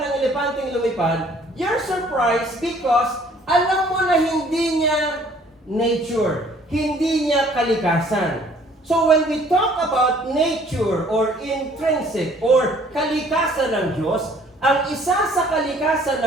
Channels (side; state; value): both; normal; correlation 0.57